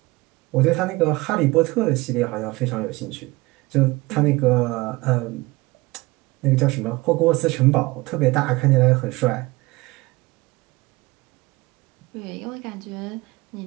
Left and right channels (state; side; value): quieter; left; 22.2 dB